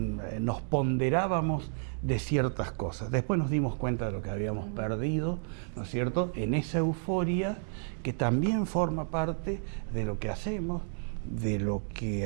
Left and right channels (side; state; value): left; silent; 57 dB below the other